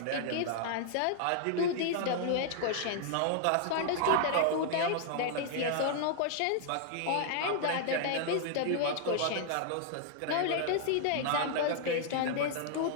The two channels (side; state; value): both; different; correlation -0.01